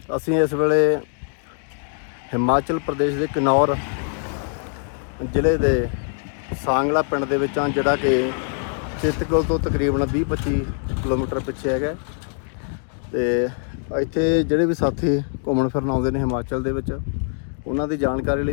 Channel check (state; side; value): silent; right; 64 dB below the other